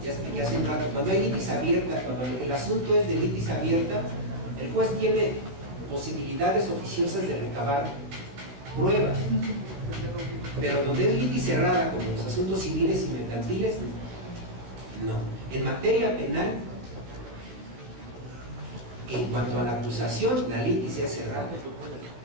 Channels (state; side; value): late; left; 15 ms